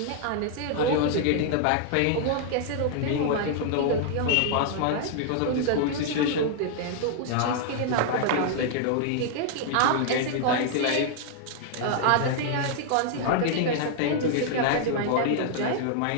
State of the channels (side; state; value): both; different; correlation 0.00